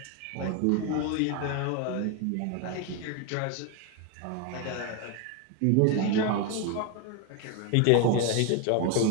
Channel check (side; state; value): both; different; correlation 0.02